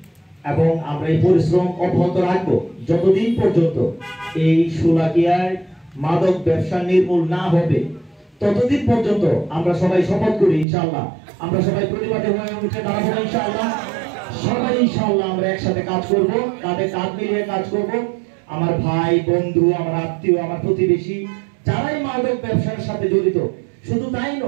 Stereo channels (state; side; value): drops out; left; at 10.7 s